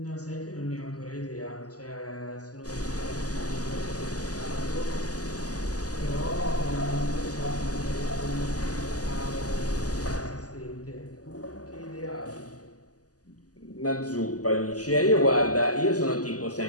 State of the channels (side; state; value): right; late; 0.67 ms